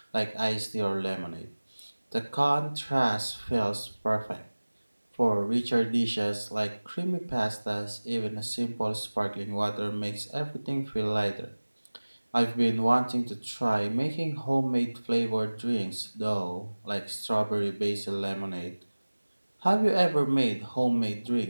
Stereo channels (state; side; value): inverted; both; correlation -1.00